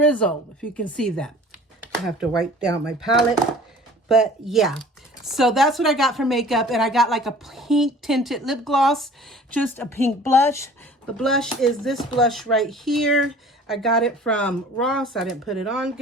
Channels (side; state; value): both; normal; correlation 0.47